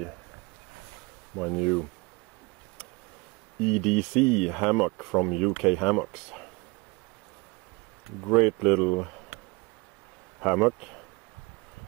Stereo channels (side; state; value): left; quieter; 26.5 dB